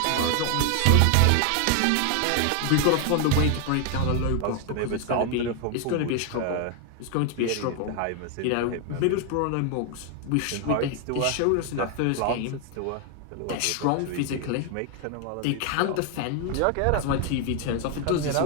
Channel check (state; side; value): different; both; correlation 0.01